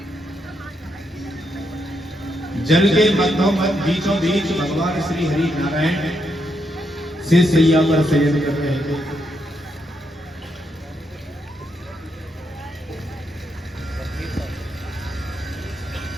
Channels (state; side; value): normal; both; correlation 0.80